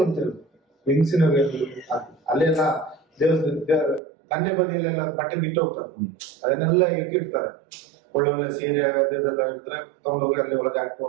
ಅಂತ ಹೇಳುದು, ಹೆಂಗಸಿನ ವೇಲು ಹಾಕಿ ಅಲ್ಲೆಲ್ಲ ದಂಡೆ ಬದಿಯಲ್ಲೆಲ್ಲ ಬಟ್ಟೆ ಬಿಟ್ಟು ಹೋಗ್ತಾರೆ, ಅದನ್ನೆಲ್ಲ ಇಟ್ಟಿರ್ತಾರೆ. ಒಳ್ಳೊಳ್ಳೆ ಸೀರೆ ಅದೆಲ್ಲ ಇದ್ರೆ ತಗೊಂಡೋಗಿ ಅಲ್ಲಿ ಒಳಗೆ ಹಾಕಿ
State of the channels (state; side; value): drops out; left; at 4.0 s